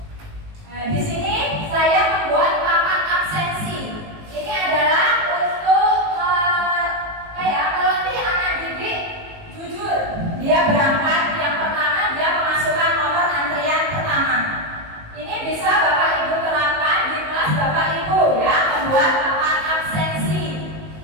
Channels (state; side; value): late; left; 19 ms